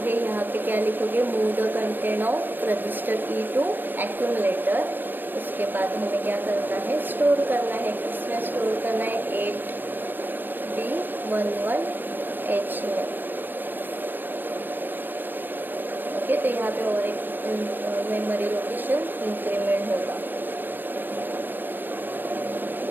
यहाँ पे क्या लिखोगे, move the content of register E to accumulator. उसके बाद हमें क्या करना है, स्टोर करना है। किसमें स्टोर करना है, 8B11H में। ओके, तो यहाँ पे और एक मेमोरी लोकेशन इंक्रीमेंट होगा।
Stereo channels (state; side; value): late; left; 0.093 ms